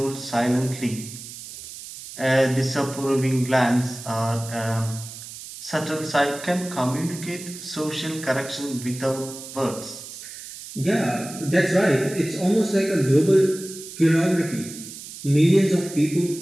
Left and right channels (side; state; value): right; noise; hiss, 13 dB below the sound